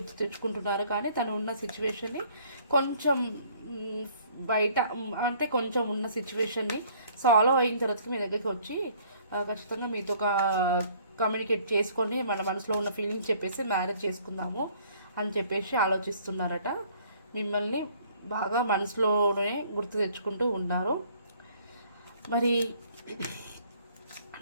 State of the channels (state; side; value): inverted; both; correlation -0.59